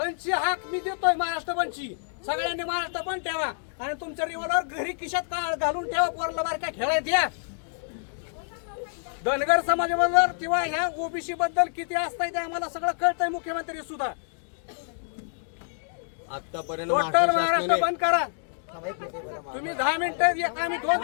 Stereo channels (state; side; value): silent; right; digital silence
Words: हाक मी देतोय. महाराष्ट्र बंदची सगळ्यांनी महाराष्ट्र बंद ठेवा आणि तुमच्या रिव्हॉल्वर घरी खिशात घालून ठेवा. पोरला बारका खेळायला द्या. धनगर समाजाबद्दल किंवा ह्या ओबीसी बद्दल किती असताय ते आम्हाला सगळं कळतंय. मुख्यमंत्री सुद्धा आतापर्यंत टोटल महाराष्ट्र बंद करा. तुम्ही 10 मिनिटं आम्ही